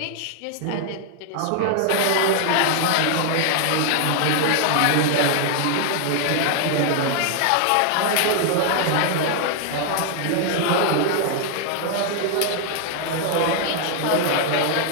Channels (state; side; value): different; both; correlation 0.00